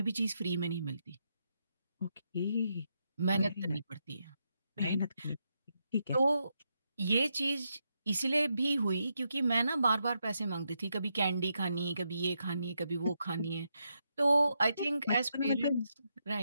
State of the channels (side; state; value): both; inverted; correlation -0.82